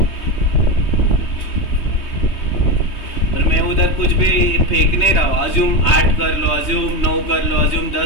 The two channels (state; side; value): late; right; 3.2 ms